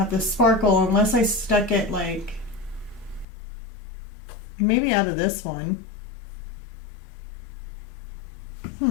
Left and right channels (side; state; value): right; drops out; at 3.2 s